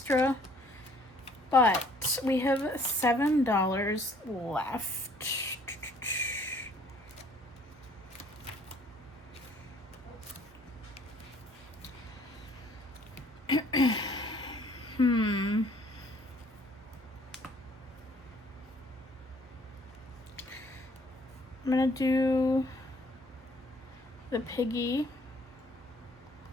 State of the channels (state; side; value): normal; both; correlation 0.59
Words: But we have $7 left. I'm gonna do the piggy